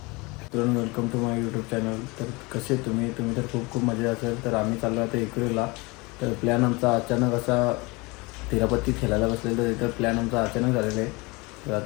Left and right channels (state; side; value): quieter; right; 25.6 dB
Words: Welcome to my YouTube channel. तर कसे तुम्ही तर खूप मजा असेल. तर आम्ही चाललो आता एकविरेला. तर प्लॅन आमचा अचानक असा तिरापत्ती खेळायला बसलेलं तर प्लॅन आमचा अचानक झालेला आहे. तर